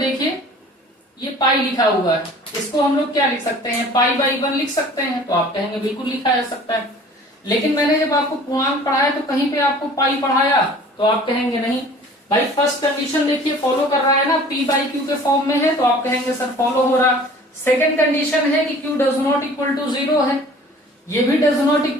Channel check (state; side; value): normal; both; correlation 0.47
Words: ये पाई लिखा हुआ है, इसको हम लोग क्या लिख सकते हैं? π/1 लिख सकते हैं। तो आप कहेंगे बिल्कुल लिखा जा सकता है, लेकिन मैंने जब आपको पूर्णांक पढ़ाया तो कहीं पे आपको पाई पढ़ाया, तो आप कहेंगे नहीं भाई। फर्स्ट कंडीशन देखिए फॉलो कर रहा है ना, p/q के फॉर्म में है, तो आप कहेंगे सर फॉलो हो रहा। सेकंड कंडीशन है कि q does not equal to 0 है, ये भी डज नॉट